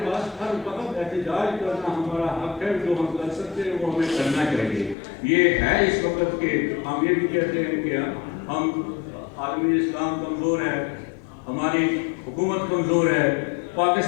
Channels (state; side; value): drops out; right; at 5.0 s